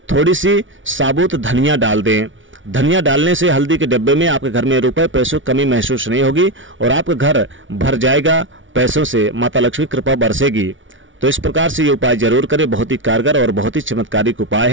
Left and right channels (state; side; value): late; left; 0.56 ms